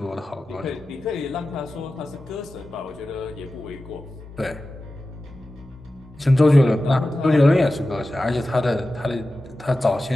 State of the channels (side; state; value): both; normal; correlation 0.94